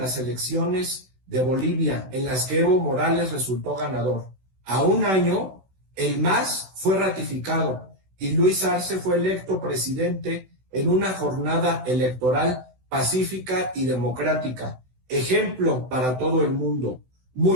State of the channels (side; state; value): left; late; 16 ms